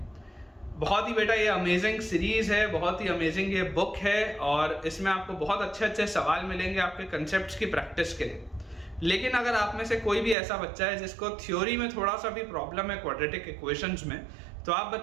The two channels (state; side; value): drops out; left; at 10.4 s